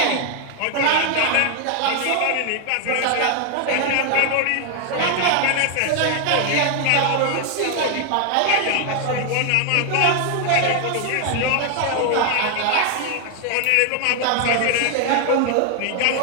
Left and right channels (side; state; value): both; different; correlation 0.00